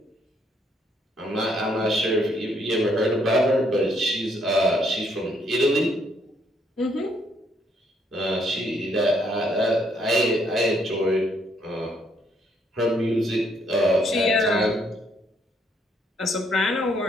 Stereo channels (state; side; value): normal; both; correlation 0.70